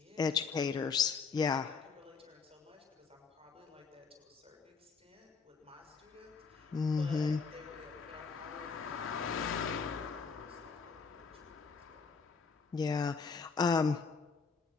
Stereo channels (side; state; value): right; quieter; 5.2 dB